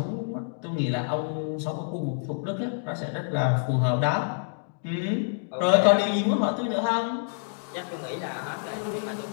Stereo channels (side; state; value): right; silent; digital silence